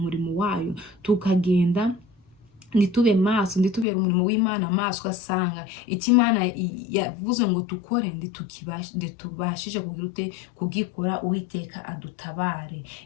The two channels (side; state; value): right; drops out; at 3.9 s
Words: wayo tukagenda nitube maso, nditubera umurimo w'Imana maso, asanga icyo Imana yavuze ngo tukore nditubashije kugira ute kugikora. Uwiteka adutabare.